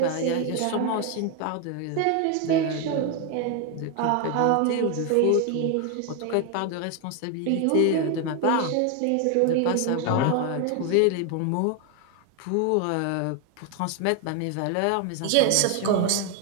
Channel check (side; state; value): both; different; correlation 0.01